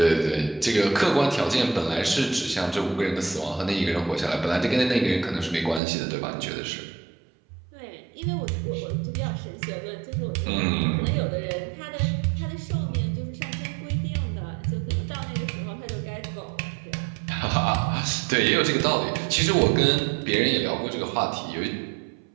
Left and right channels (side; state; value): left; drops out; at 5.8 s